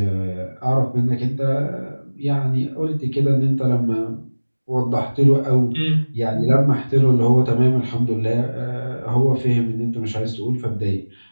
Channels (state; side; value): inverted; both; correlation -1.00